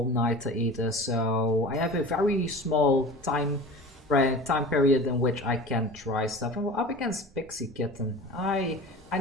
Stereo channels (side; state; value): both; normal; correlation 0.36